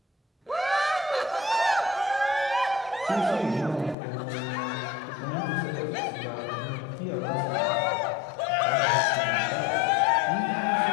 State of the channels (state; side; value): drops out; right; at 4.0 s